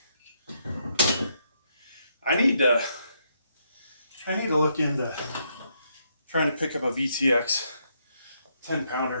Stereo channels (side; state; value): both; inverted; correlation -0.76